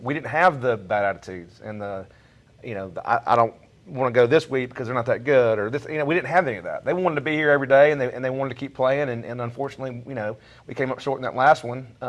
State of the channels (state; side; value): identical; both; correlation 1.00